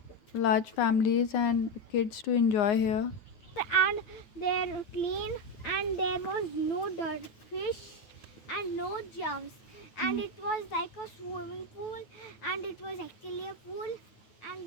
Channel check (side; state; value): right; late; 9.1 ms